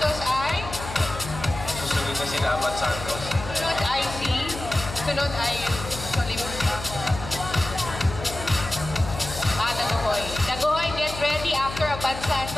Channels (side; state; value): left; noise; hum, 10 dB below the sound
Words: ay? Susunod na si Abad Santos. Sunod ay sunod ay Daguhoy. Daguhoy, get ready after Abad